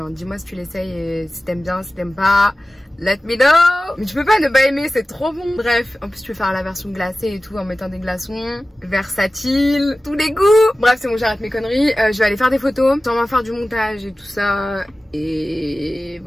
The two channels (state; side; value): normal; both; correlation 0.96